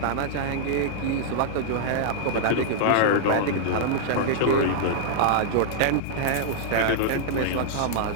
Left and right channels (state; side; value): different; both; correlation -0.01